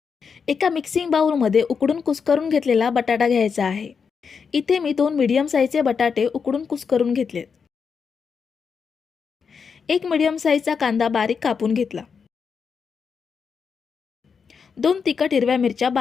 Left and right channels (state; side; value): quieter; right; 6.0 dB